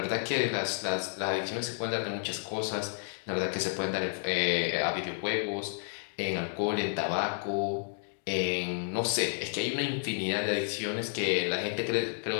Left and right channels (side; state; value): right; silent; digital silence